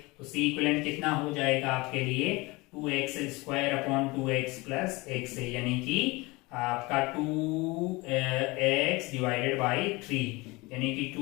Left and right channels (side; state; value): right; quieter; 23.6 dB